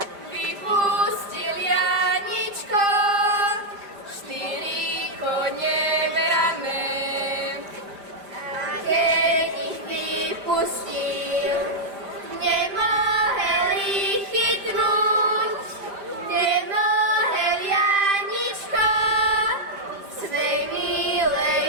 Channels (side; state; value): left; late; 5.0 ms